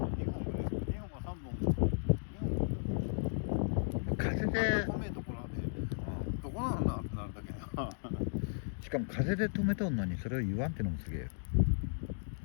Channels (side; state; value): right; silent; digital silence